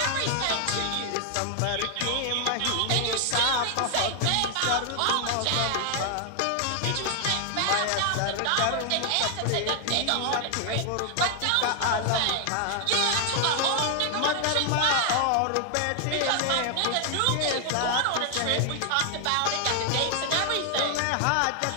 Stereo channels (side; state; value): both; different; correlation 0.00